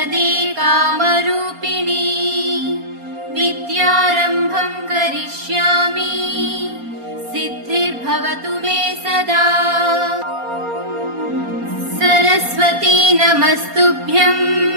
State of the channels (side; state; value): left; late; 4.3 ms